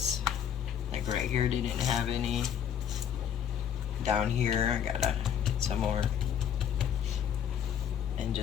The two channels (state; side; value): quieter; right; 8.9 dB